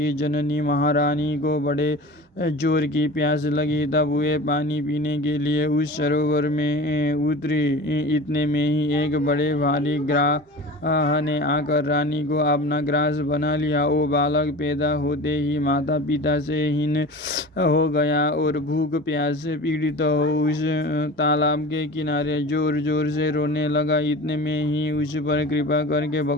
जननी महारानी को बड़े जोर की प्यास लगी, तब वे पानी पीने के लिए उस सरोवर में उतरी। इतने में ही एक बड़े भारी ग्राह ने आकर रानी को अपना ग्रास बना लिया। वो बालक पैदा होते ही माता पिता से हीन हो गया और भूख प्यास से पीड़ित हो उस तालाब के किनारे जोर जोर से रोने लगा। इतने में ही उस पर कृपा करके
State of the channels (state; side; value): normal; both; correlation 0.35